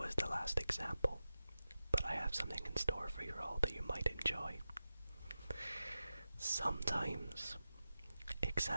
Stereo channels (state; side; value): inverted; both; correlation -0.93